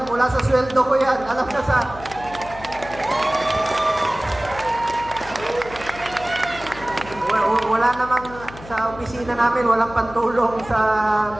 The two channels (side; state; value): left; noise; hum, 16 dB below the sound